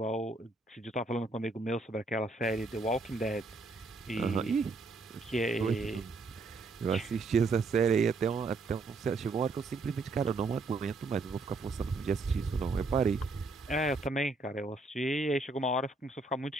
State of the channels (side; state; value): left; quieter; 3.6 dB